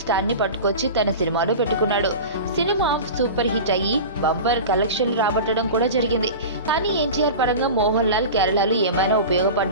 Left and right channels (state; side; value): inverted; both; correlation -0.31